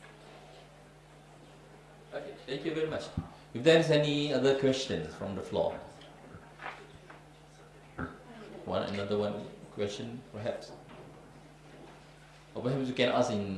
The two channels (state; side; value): identical; both; correlation 1.00